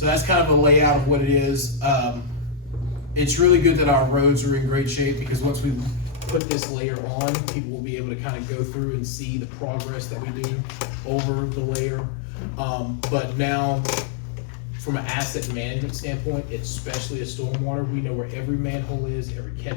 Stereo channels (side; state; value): right; drops out; at 6.4 s